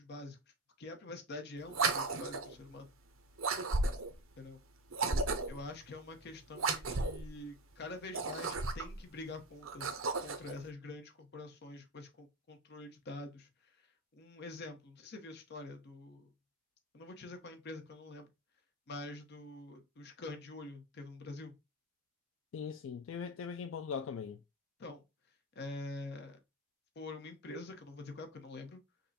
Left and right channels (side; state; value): both; normal; correlation 0.22